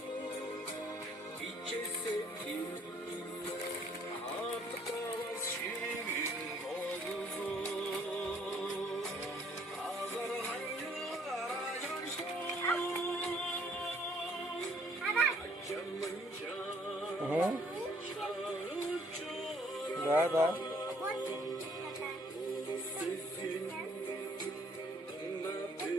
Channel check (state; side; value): normal; both; correlation 0.63